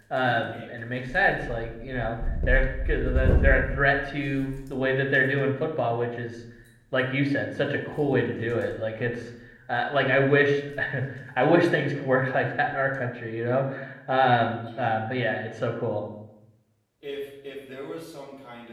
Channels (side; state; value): both; identical; correlation 1.00